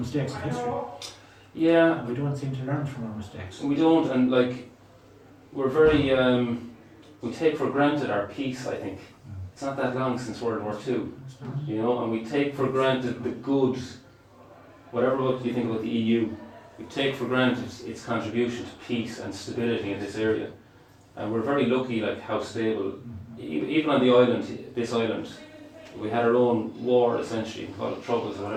of history. Yeah. And we don't seem to learn from our mistakes. We don't, and like, we're very, we take for granted our peace, I think. It's not that long since World War II, you know, and we take for granted the good, whatever you think about the EU, we take for granted its contribution to peace and stability in this area. And we're very lucky, like, how stable, even on the island, this island, we had our own war, essentially, call it troubles or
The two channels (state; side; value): identical; both; correlation 1.00